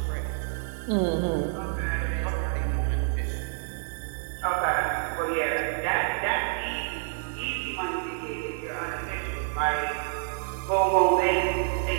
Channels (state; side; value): silent; left; digital silence